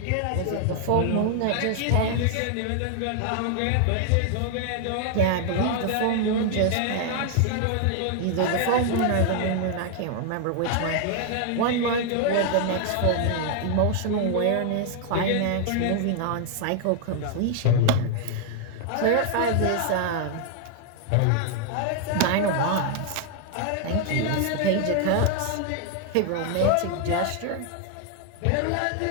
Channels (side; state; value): both; different; correlation 0.00